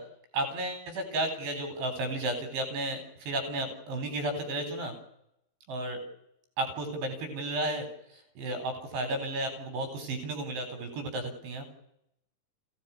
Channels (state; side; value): late; left; 15 ms